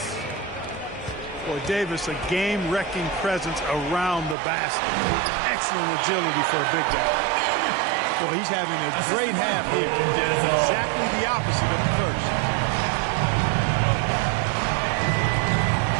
Boy, Davis, a game-wrecking presence around the basket. Excellent agility for a big guy. Boy, he's having a great half here. Exactly the opposite of the first.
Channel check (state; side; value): drops out; left; at 4.4 s